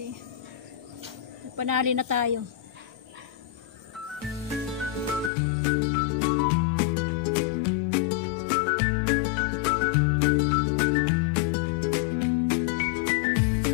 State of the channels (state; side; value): drops out; right; at 5.3 s